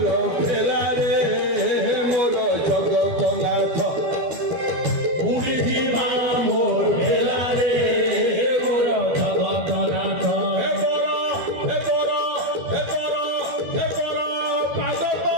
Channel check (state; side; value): late; left; 12 ms